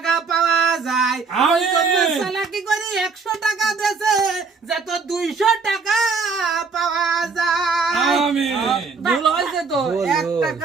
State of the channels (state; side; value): quieter; left; 4.8 dB